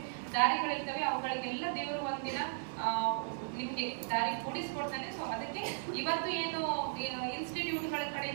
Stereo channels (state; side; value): silent; left; digital silence